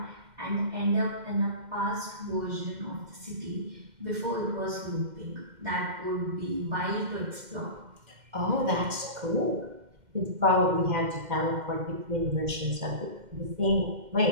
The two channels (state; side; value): late; left; 2.1 ms